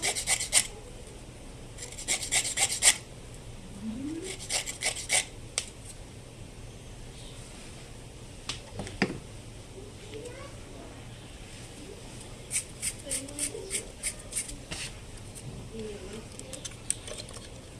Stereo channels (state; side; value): identical; both; correlation 1.00